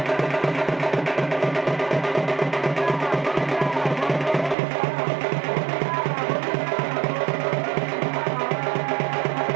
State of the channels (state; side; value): drops out; left; at 4.5 s